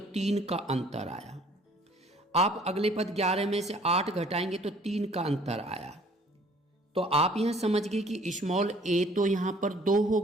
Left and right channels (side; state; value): both; normal; correlation 0.56